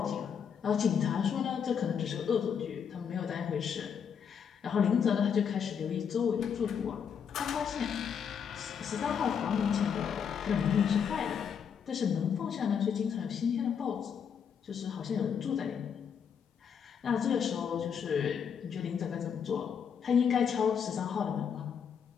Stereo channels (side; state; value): right; quieter; 7.3 dB